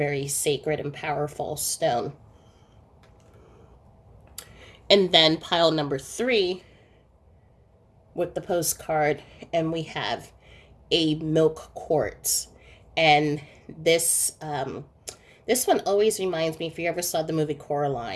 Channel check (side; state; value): both; identical; correlation 1.00